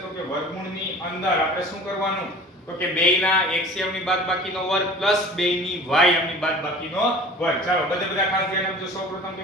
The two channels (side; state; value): both; normal; correlation 0.42